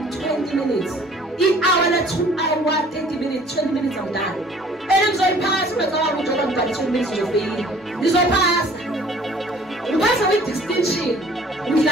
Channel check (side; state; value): both; normal; correlation 0.53